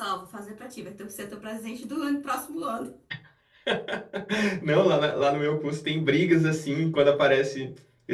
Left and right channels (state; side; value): identical; both; correlation 1.00